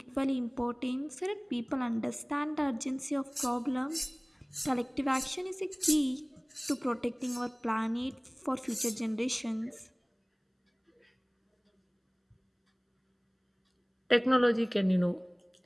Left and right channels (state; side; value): identical; both; correlation 1.00